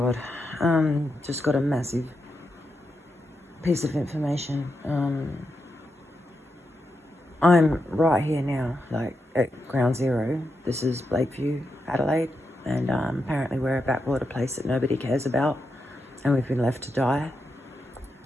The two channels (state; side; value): normal; both; correlation 0.86